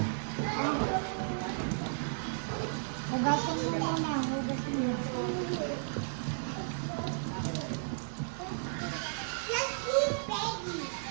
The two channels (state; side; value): silent; left; digital silence